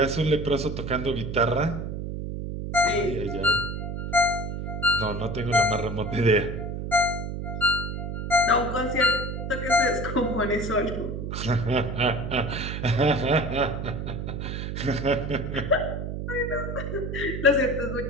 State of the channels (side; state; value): right; noise; hum, 5 dB below the sound